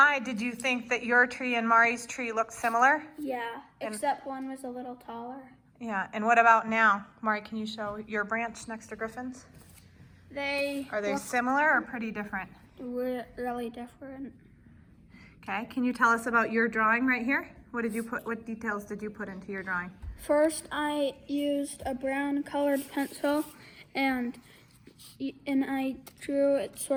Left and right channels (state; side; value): identical; both; correlation 1.00